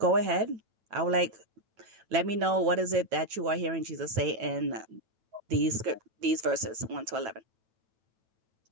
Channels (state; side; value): late; left; 9.1 ms